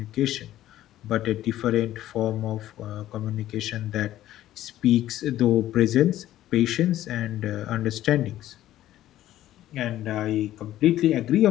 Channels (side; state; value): right; quieter; 13.6 dB